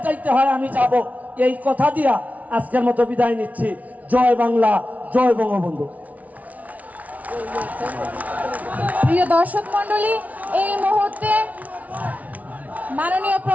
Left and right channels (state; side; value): late; left; 0.071 ms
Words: যাইতে হয় আমি যাব। এই কথা দিয়া আজকের মতো বিদায় নিচ্ছি। জয় বাংলা, জয় বঙ্গবন্ধু। প্রিয় দর্শক মন্ডলী, এই মুহূর্তে মাননীয়